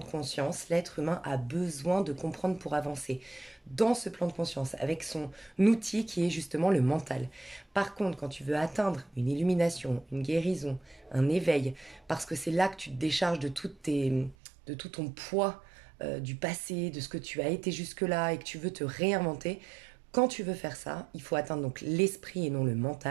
conscience, l'être humain a besoin de comprendre pour avancer. Dans ce plan de conscience, avec son outil qui est justement le mental. Par contre, quand tu veux atteindre une illumination, une guérison, un éveil, parce que c'est là que tu te décharges de tout ton poids du passé, de ce que tu as été jusque-là et que tu veux te réinventer, quand tu veux faire ça, il faut atteindre donc l'esprit et non le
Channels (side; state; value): left; drops out; at 14.4 s